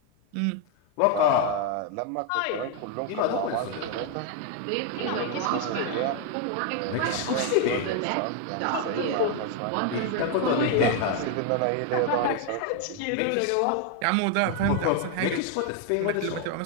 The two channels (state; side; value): different; both; correlation 0.01